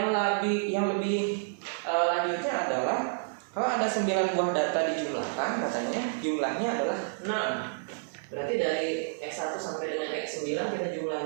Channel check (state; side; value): silent; left; 58 dB below the other